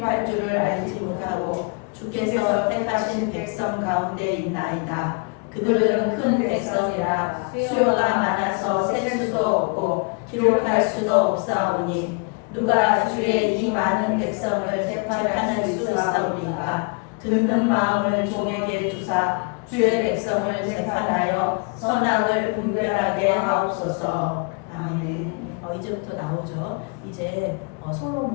줄을 알지 못하고 주께서 택하신 백성 가운데 있나이다. 그들은 큰 백성이라 수요가 많아서 셀 수도 없고 기록할 수도 없사오니 누가 주의 이 많은 백성을 재판할 수 있사오리까. 듣는 마음을 종에게 주사 주의 백성을 재판하여 선악을 분별하게 하옵소서. 아멘. 이제부터 나오죠. 이제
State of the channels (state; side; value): quieter; right; 33.8 dB